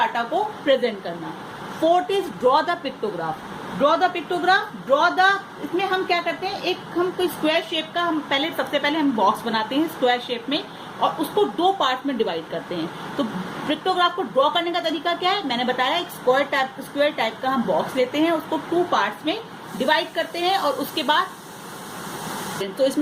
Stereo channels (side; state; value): both; identical; correlation 1.00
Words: को प्रेजेंट करना। Fourth is draw the pictograph. Draw the pictograph, इसमें हम क्या करते हैं, एक हम कोई स्क्वायर शेप का हम सबसे पहले हम बॉक्स बनाते हैं स्क्वायर शेप में और उसको दो पार्ट में डिवाइड करते हैं। तो पिक्टोग्राफ को ड्रॉ करने का तरीका क्या है? मैंने बताया एक स्क्वायर टाइप का हम बॉक्स लेते हैं, उसको टू पार्ट्स में डिवाइड करते हैं और उसके बाद तो